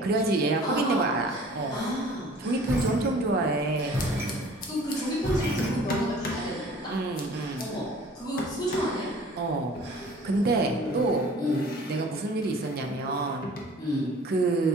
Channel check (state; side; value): normal; both; correlation 0.49